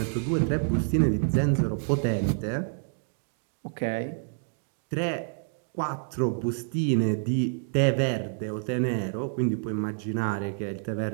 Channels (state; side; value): silent; left; digital silence